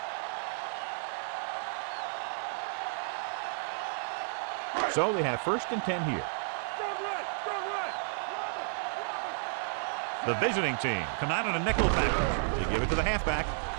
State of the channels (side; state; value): left; silent; digital silence